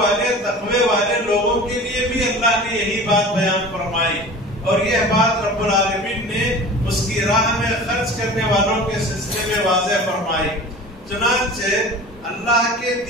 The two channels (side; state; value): both; normal; correlation 0.38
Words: تقوی والے لوگوں کے لیے بھی اللہ نے یہی بات بیان فرمائی، اور یہ بات رب العالمین نے اس کی راہ میں خرچ کرنے والوں کے سلسلے میں واضح فرمائی۔ چنانچہ اللہ کے